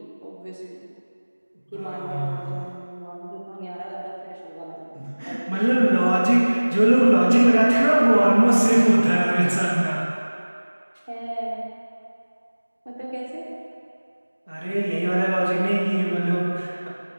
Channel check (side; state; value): both; inverted; correlation -1.00